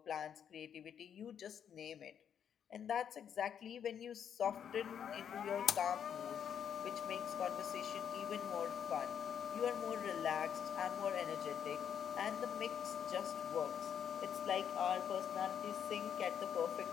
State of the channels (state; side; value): quieter; right; 8.5 dB